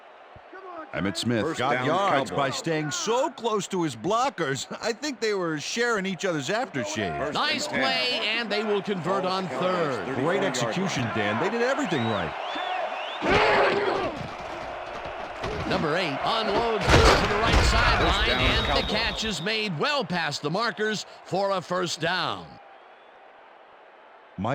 Emmitt Smith First got down, yards Cowboys. by staying so close to his blockers. I think they were sharing each other's aftershave. Nice play, and they will convert on third. Great execution, Dan. They did everything right. Number 8 unloads this to the right sideline, down, and the Cowboys. catch is made well past the markers for a first down.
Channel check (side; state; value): both; identical; correlation 1.00